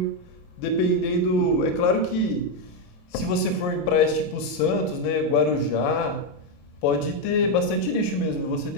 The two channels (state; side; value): late; right; 28 ms